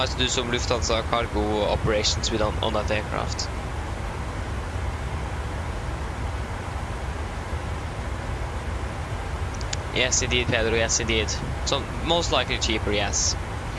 to do some Lufthansa cargo operations with on that aircraft. Yes indeed, Pedro, yes indeed. So most likely cheaper, yes.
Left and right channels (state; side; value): identical; both; correlation 1.00